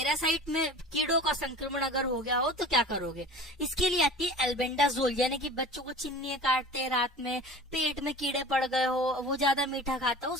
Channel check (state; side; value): normal; both; correlation 0.39